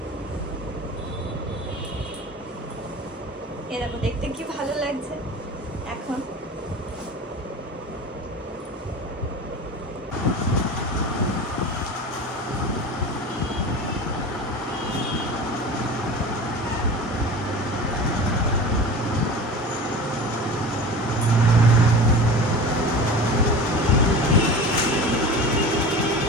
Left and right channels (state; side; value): normal; both; correlation 0.34